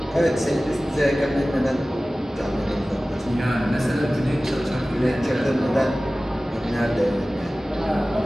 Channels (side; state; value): both; normal; correlation 0.97